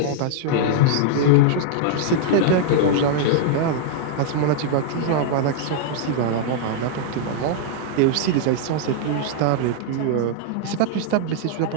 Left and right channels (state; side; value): different; both; correlation -0.01